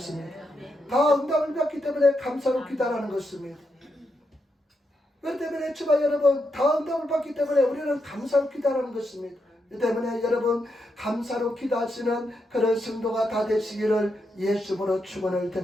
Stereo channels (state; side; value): normal; both; correlation 0.83